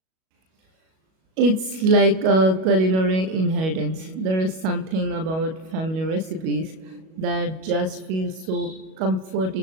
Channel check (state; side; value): late; left; 37 ms